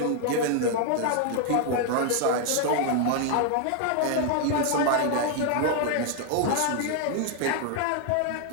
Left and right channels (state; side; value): different; both; correlation 0.00